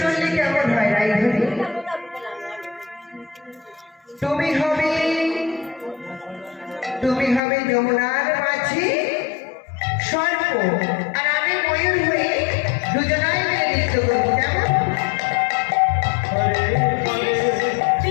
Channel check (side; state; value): right; drops out; at 7.4 s